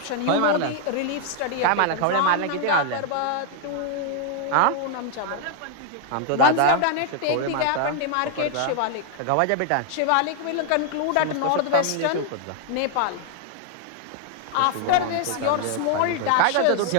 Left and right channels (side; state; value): both; different; correlation 0.00